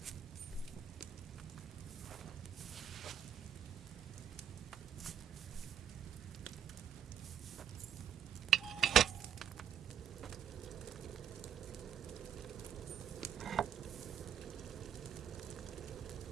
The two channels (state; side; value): quieter; left; 9.0 dB